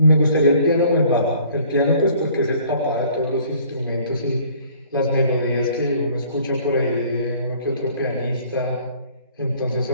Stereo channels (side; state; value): both; inverted; correlation -0.56